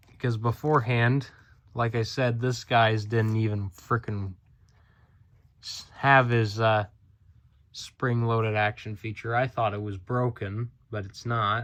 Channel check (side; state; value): both; identical; correlation 1.00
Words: because beforehand, like I said, this guy's didn't even frickin' have his spring-loaded action feature. I thought it was broken, but it's